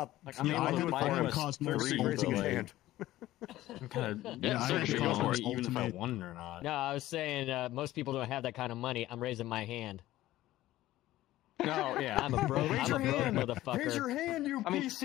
I'm Yeah, able I to have buy a Quest Cosmos 3, Ultimate. Raising his but, like, hand. I'm kind of Yeah, I have searching the on Cosmos it, even if I Ultimate. won it or not. No, I was saying most people don't have that kind of money. I'm raising my hand. No, yeah. I'm a broke, Raise I'm a your broke hand. motherfucker. Raise your hand, you I mean,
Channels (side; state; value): right; quieter; 15.5 dB